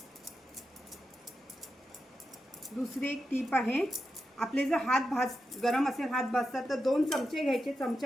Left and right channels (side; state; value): both; normal; correlation 0.88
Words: दुसरी एक टीप आहे. आपले जर हात गरम असेल, हात भाजतात तर 2 चमचे घ्यायचे.